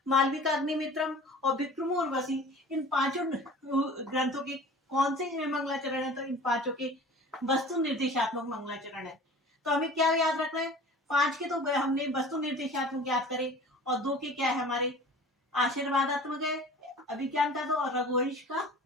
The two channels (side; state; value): both; normal; correlation 0.42